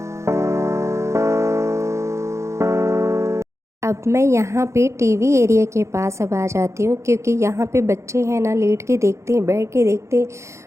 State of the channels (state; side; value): late; left; 0.14 ms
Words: अब मैं यहाँ पे टीवी एरिया के पास अब आ जाती हूँ, क्योंकि यहाँ पे बच्चे हैं ना, लेट के देखते हैं, बैठ के देखते हैं,